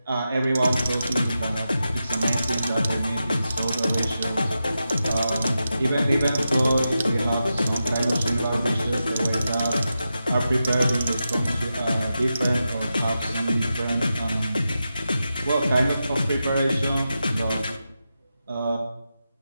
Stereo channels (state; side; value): inverted; both; correlation -0.90